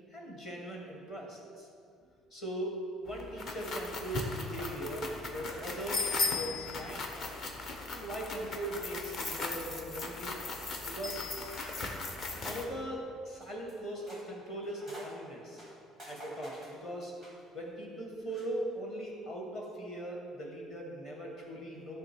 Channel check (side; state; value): both; normal; correlation 0.54